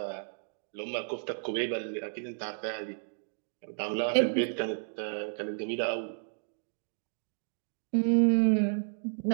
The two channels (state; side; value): silent; left; digital silence